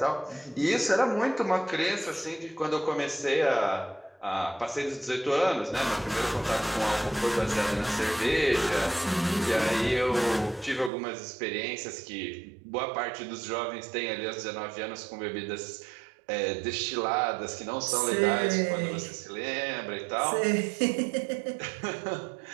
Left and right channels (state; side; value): drops out; left; at 10.9 s